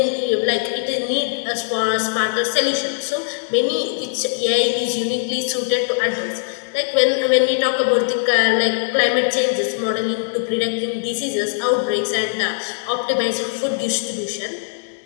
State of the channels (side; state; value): right; silent; digital silence